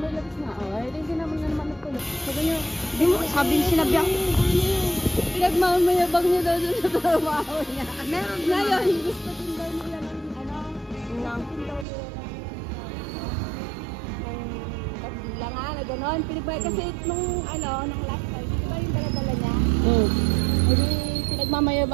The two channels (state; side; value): drops out; left; at 11.9 s